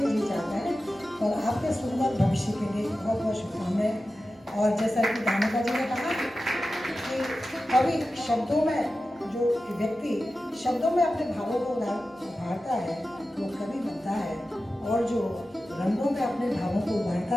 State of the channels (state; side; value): normal; both; correlation 0.93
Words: जी चाहता है। और आपके सुंदर भविष्य के लिए बहुत बहुत शुभकामनाएं। और जैसा कि दानिका जी ने कहा कि कवि शब्दों में, जो व्यक्ति शब्दों में अपने भावों को उभारता है वो कवि बनता है, और जो रंगों में अपने भावों को उभारता